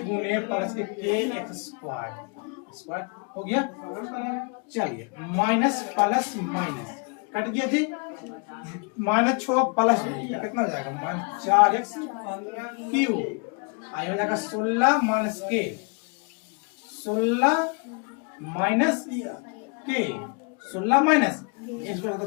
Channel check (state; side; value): quieter; right; 34.2 dB